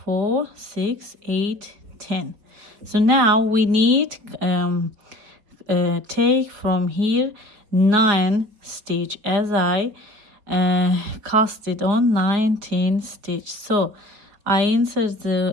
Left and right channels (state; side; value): late; left; 5.0 ms